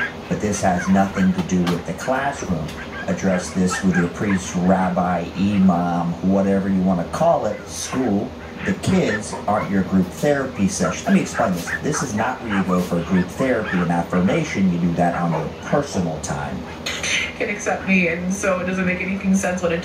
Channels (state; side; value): identical; both; correlation 1.00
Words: but this has nothing to do with the classroom. Address this with your priest, rabbi, imam, whatever you want to call it, school. The kids aren't your group therapy session. Let me explain this. This is not where you go for group therapy and affirmation. You do that on your personal time. Can accept me, and so it doesn't make anything sense what